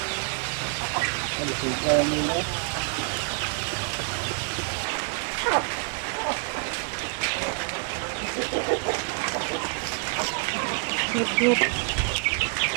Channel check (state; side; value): quieter; left; 39.1 dB